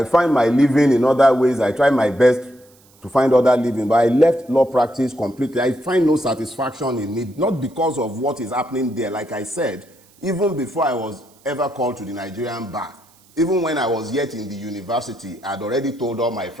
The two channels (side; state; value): right; noise; hiss, 30 dB below the sound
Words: find my living in other ways. I try my best to find other living. But I left law practice completely. I find no satisfaction in it. Not because of what is happening there. Like I said, even before I was ever called to the Nigerian bar, even when I was yet in the university, I'd already told all my